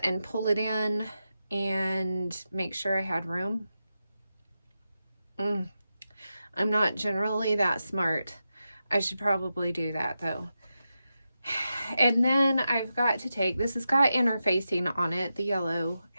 and pull it in and make sure I had room. I'm not generally that smart. I should probably do that though. And then I've got to take, this has got interfacing on it. The yellow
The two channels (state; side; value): inverted; both; correlation -0.90